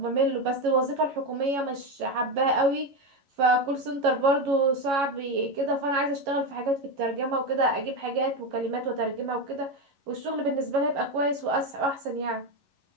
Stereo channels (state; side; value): late; left; 11 ms